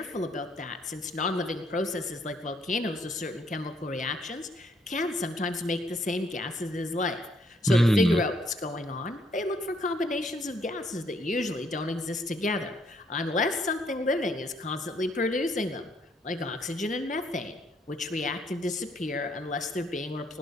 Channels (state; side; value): normal; both; correlation 0.69